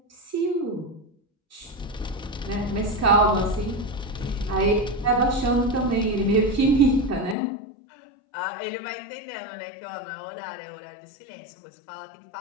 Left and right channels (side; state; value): right; drops out; at 7.4 s